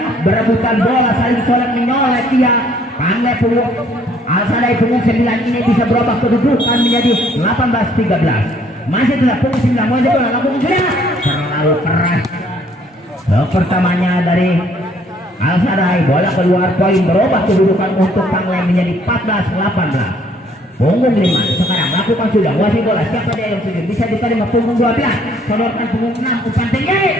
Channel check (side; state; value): both; normal; correlation 0.62